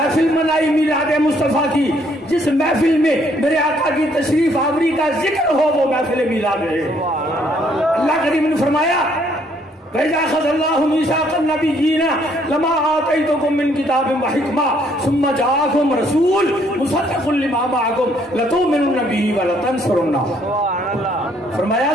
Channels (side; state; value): both; normal; correlation 0.67